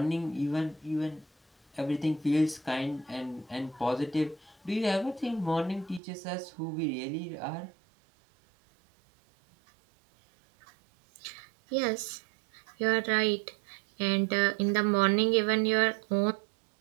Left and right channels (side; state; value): left; drops out; at 6.0 s